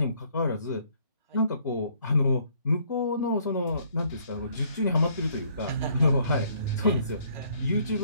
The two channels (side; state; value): both; inverted; correlation -0.64